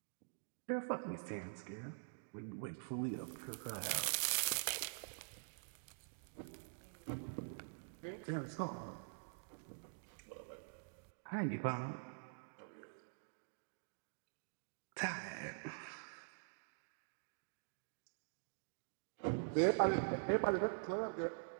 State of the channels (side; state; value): left; silent; digital silence